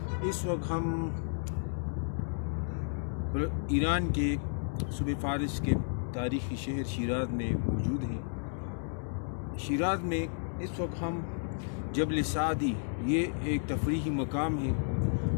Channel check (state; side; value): silent; right; digital silence